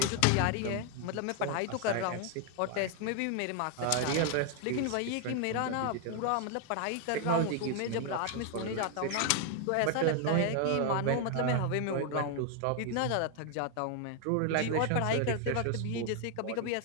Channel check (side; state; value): both; different; correlation 0.00